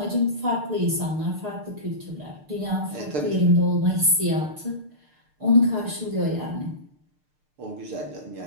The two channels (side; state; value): left; late; 6.7 ms